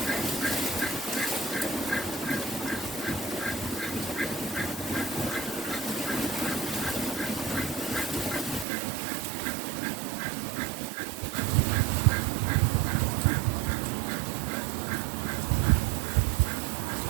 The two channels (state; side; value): drops out; left; at 8.7 s